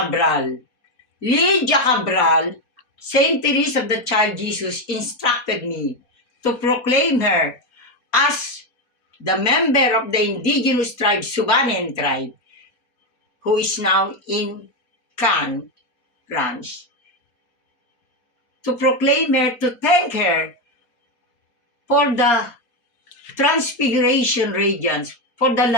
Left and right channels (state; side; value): late; right; 4.1 ms